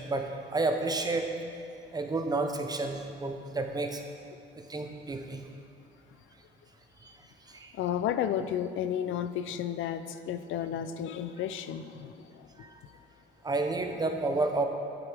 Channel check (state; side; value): normal; both; correlation 0.42